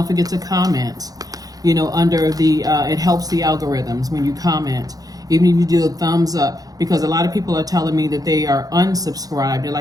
forget to comment. You know, under the, it helps the algorithms when you comment. Even if you do a thumbs up, because a lot of people are telling me that they are unsubscribed. They're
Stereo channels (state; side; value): late; left; 0.18 ms